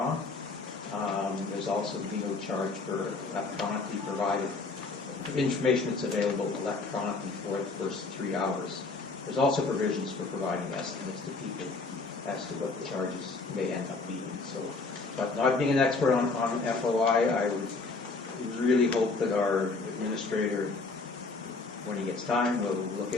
There's also no charge for electronically provided information that's available electronically for the first 3 hours. There's also provisions for providing estimates to people as to what the charges may end up being. So, but not being an expert on FOI, I would really hope that our administrator, when he gets time, will look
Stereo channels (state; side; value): quieter; right; 3.9 dB